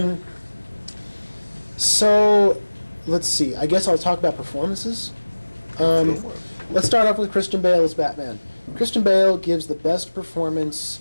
So, let's see. I guess I'll talk about performances. Let's start off with Christian Bale as Batman. Christian Bale gives the best performance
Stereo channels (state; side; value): inverted; both; correlation -1.00